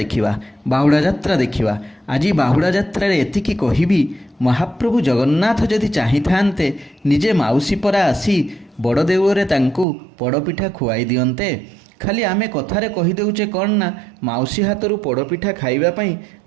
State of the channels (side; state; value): left; drops out; at 9.9 s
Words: बाहुड़ा यात्रा देखा। आज बाहुड़ा यात्रा एतिकी कहबी महाप्रभु जगन्नाथ जदि चाही थांते निजे माउसी परा आसी बड़ देउଳରେ तांकु पड़पिठा खुआई दियंते। खाली आमे कथारे कहीदेचे कौन ना माउसी हाथरू पड़पिठा खाइबापी